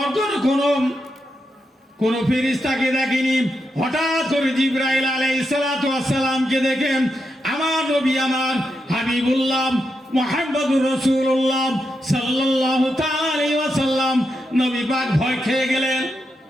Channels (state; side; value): normal; both; correlation 0.85